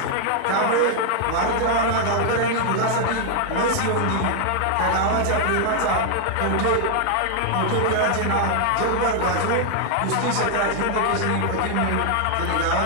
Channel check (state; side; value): different; both; correlation 0.00